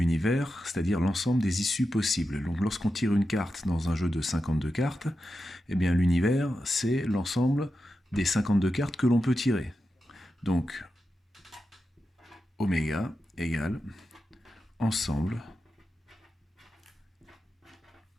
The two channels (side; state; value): both; normal; correlation 0.90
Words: c'est-à-dire l'ensemble des issues possibles. Donc lorsqu'on tire une carte dans un jeu de 52 cartes, eh bien l'univers, c'est l'ensemble des 52 cartes que l'on peut tirer. Donc oméga égale ensemble